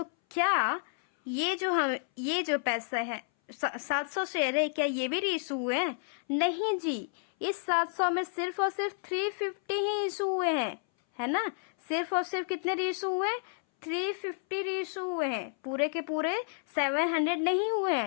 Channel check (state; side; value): silent; right; 57 dB below the other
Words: क्या ये जो पैसा है 700 शेयर है, क्या ये भी रीइशू हुए हैं? नहीं जी, इस 700 में सिर्फ और सिर्फ 350 ही इशू हुए हैं, है ना। सिर्फ और सिर्फ कितने रीइशू हुए? 350 रीइशू हुए हैं, पूरे के पूरे 700 नहीं हुए